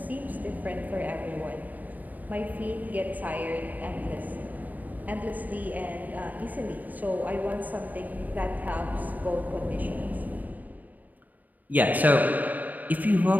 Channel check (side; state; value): left; late; 0.081 ms